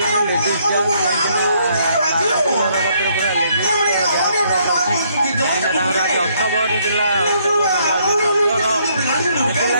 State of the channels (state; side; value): inverted; both; correlation -0.69